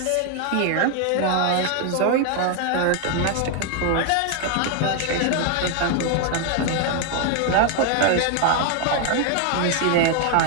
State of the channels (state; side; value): different; both; correlation 0.00